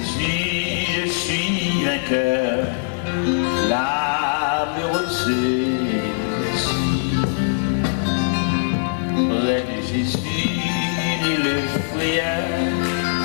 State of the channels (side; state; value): right; silent; digital silence